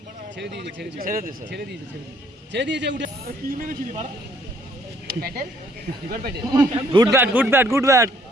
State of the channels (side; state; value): both; normal; correlation 0.63